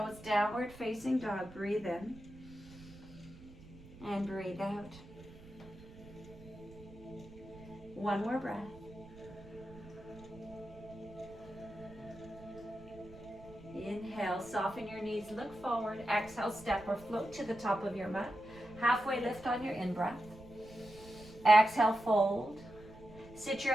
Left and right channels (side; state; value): right; noise; rumble, 19 dB below the sound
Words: downward facing dog. Breathe in and breathe out. One more breath. Inhale, soften your knees, look forward. Exhale, step or float to the top of your mat. Halfway lift on your in-breath. Exhale, fold. Sit your